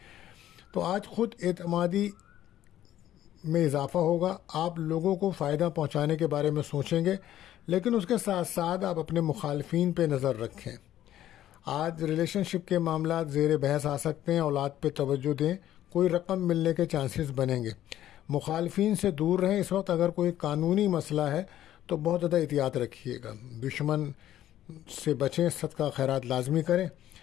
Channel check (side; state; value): right; quieter; 12.5 dB